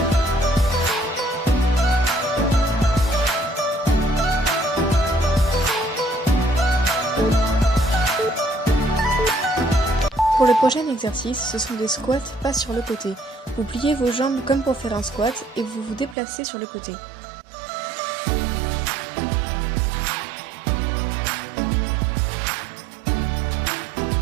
Pour le prochain exercice, ce sont des squats pas sur le côté. Vous pliez vos jambes comme pour faire un squat et vous vous déplacez sur le côté.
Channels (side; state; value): left; drops out; at 16.2 s